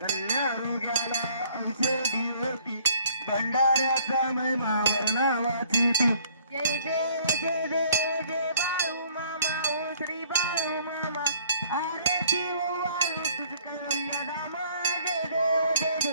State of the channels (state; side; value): inverted; both; correlation -0.60